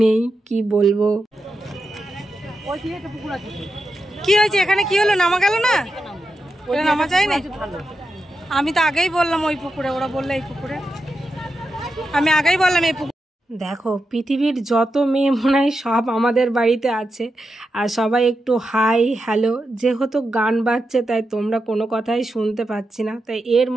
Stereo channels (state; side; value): normal; both; correlation 0.88